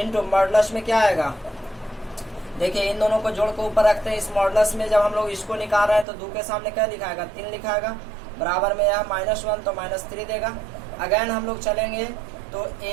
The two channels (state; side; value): drops out; left; at 6.1 s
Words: मॉडुलस में क्या आएगा, देखिए इन दोनों को जोड़ के ऊपर रखते हैं। इस मॉडुलस में जब हम लोग इसको निकाल रहे हैं तो 2 के सामने क्या लिखाएगा, 3 लिखाएगा, बराबर में यह -1 तो -3 देगा। अगेन हम लोग चलेंगे तो